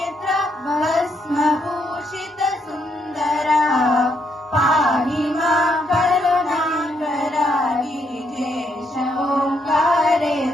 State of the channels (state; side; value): normal; both; correlation 0.75